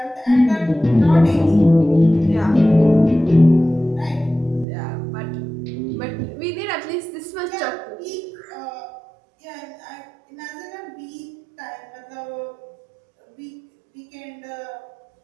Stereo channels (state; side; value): drops out; left; at 4.7 s